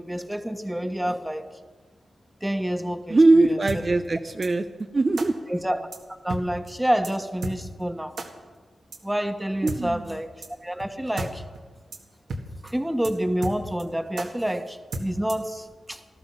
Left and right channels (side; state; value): both; normal; correlation 0.98